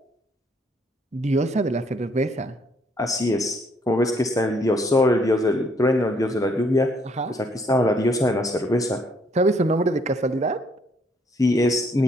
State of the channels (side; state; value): both; normal; correlation 0.67